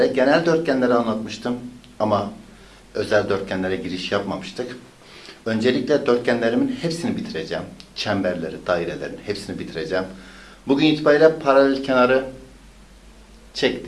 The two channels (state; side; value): identical; both; correlation 1.00